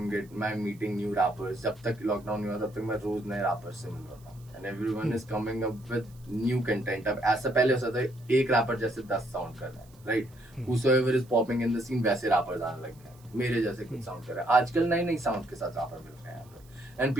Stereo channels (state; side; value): noise; right; hiss, 28 dB below the sound